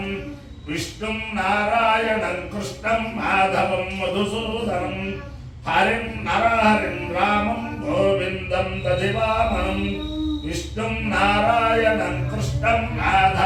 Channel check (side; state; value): both; identical; correlation 1.00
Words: విష్ణుం నారాయణం కృష్ణం మాధవం మధుసూదనం హరిం నరహరిం రామం గోవిందం దధివామనం విష్ణుం నారాయణం కృష్ణం